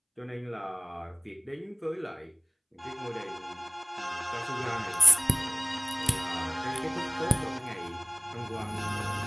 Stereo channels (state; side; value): identical; both; correlation 1.00